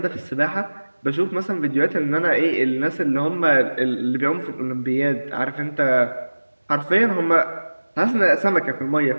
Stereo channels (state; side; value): inverted; both; correlation -1.00